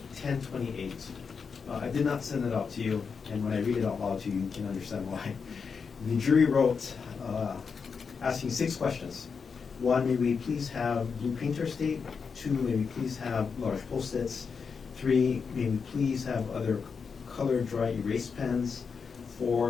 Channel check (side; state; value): right; quieter; 5.7 dB